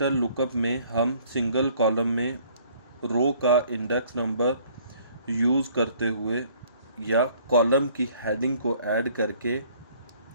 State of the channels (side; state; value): both; inverted; correlation -0.59